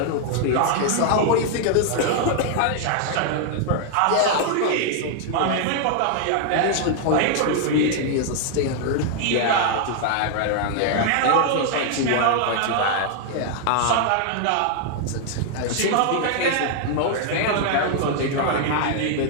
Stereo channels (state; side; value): different; both; correlation 0.00